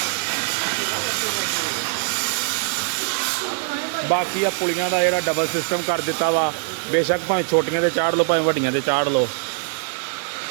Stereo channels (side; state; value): left; silent; digital silence